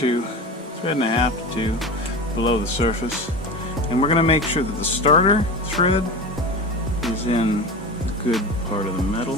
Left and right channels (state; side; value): normal; both; correlation 0.28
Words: thread and a half to two below the surface. And we're going to make sure that the starter thread is in the good part of the